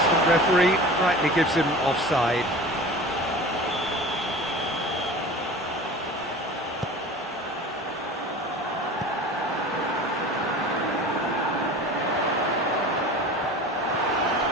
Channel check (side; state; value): both; normal; correlation 0.37